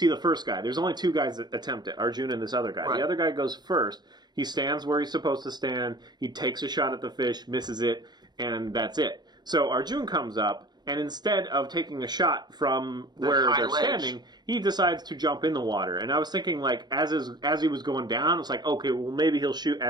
the first guy. There's only 2 guys that attempt it, Arjun and this other guy. Right. The other guy goes first. He stands where he's supposed to stand. He takes a shot at the fish, misses it, and that's it. So Arjun comes up, and instead of taking a shot from where they're standing, he decides to jump in the water. And I was thinking, like, as he was going down, it's like, okay, well, maybe he'll shoot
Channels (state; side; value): late; left; 0.20 ms